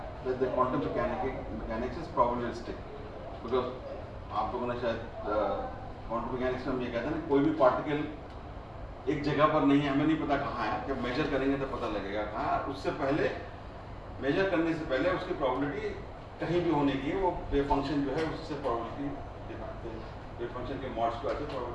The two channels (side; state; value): both; identical; correlation 1.00